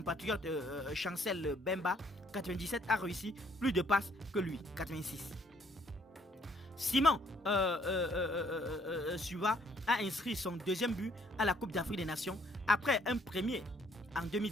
Chancel Bemba, 97, a réussi plus de passes que lui, 86. Simon Suva a inscrit son deuxième but à la Coupe d'Afrique des Nations après un premier en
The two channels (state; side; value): normal; both; correlation 0.65